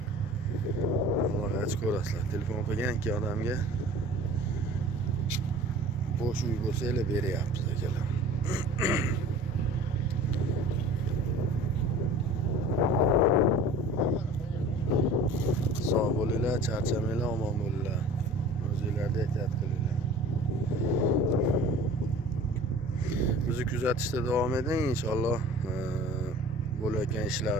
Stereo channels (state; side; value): normal; both; correlation 0.42